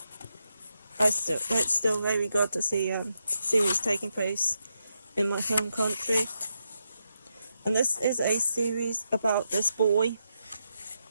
It's still very good to see series taking place in my home country. And this is a series about this boy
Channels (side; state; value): both; inverted; correlation -0.83